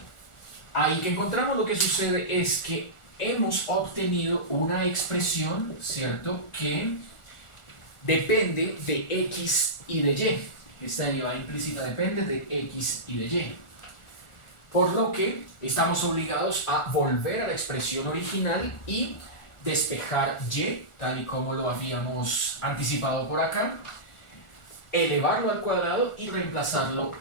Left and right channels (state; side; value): late; right; 1.4 ms